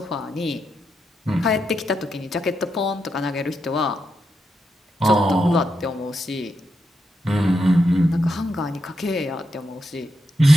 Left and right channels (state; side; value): normal; both; correlation 0.84